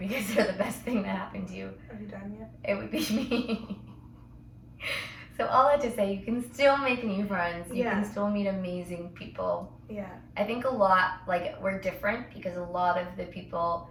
they're the best thing that happened to you. Are you done yet? It would be me. So all that to say, you can still make new friends. You can still meet amazing people. Yeah. I think a lot, like, we're different because a lot of the people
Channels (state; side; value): identical; both; correlation 1.00